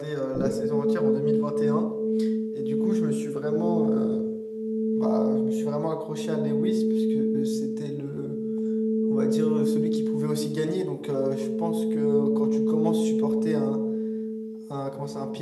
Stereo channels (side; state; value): both; identical; correlation 1.00